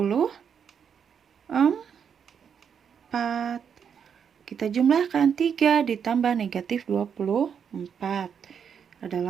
Kita jumlahkan 3 ditambah negatif 24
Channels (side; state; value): left; quieter; 7.3 dB